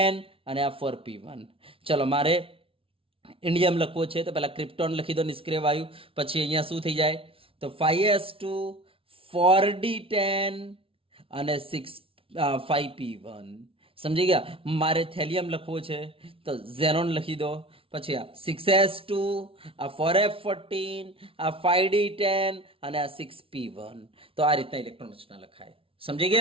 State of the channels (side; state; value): left; late; 0.26 ms